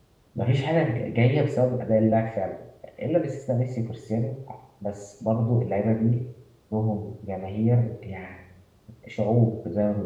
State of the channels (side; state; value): both; identical; correlation 1.00